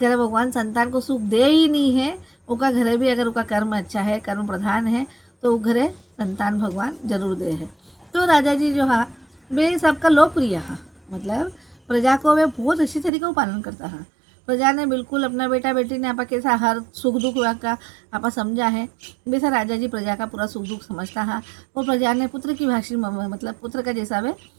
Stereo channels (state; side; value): drops out; left; at 13.1 s